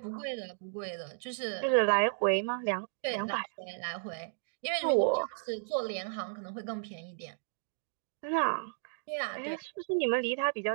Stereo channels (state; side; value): silent; left; digital silence